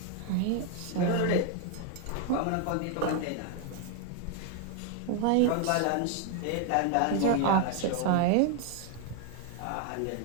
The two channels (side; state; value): both; different; correlation 0.01